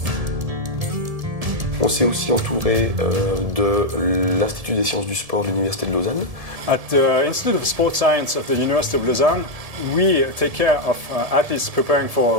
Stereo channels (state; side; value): late; left; 1.7 ms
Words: On s'est aussi entouré de l'Institut des sciences du sport de l'Université de Lausanne. At the Institute of Sport Science of the University of Lausanne, we take care of athletes preparing